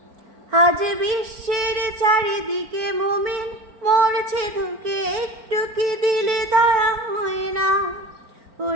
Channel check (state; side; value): late; left; 4.4 ms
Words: আজ বিশ্বের চারিদিকে মুমিন মরছে ধুকে, একটু কি দিলে দয়া হয় না?